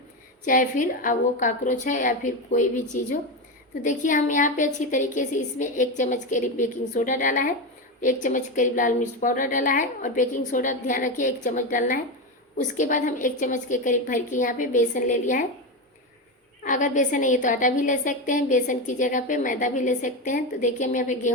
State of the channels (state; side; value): normal; both; correlation 0.15